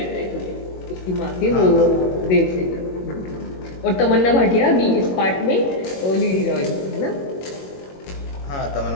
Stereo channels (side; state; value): right; late; 21 ms